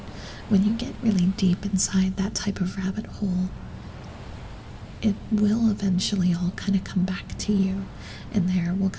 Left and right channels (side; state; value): both; identical; correlation 1.00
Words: when you get really deep inside that type of rabbit hole, it will eventually all kind of come back to you, and there will